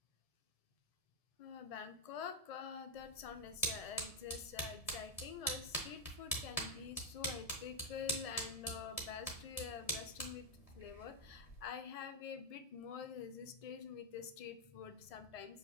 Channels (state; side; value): late; right; 1.7 ms